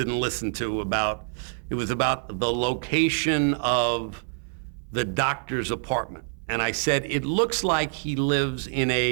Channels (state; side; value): silent; left; 61 dB below the other